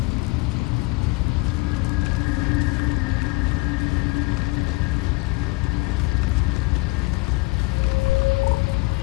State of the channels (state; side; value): quieter; right; 24.4 dB